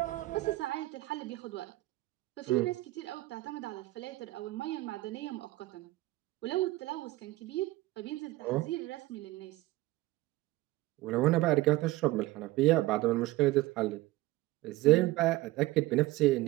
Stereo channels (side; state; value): left; quieter; 18.3 dB